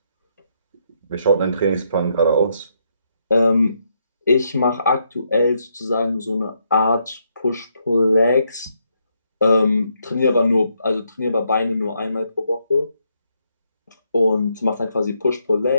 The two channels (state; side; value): inverted; both; correlation -0.77